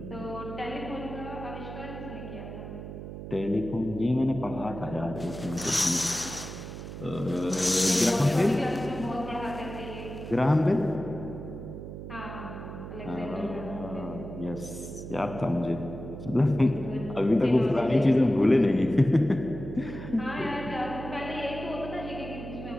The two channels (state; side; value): noise; right; hum, 10 dB below the sound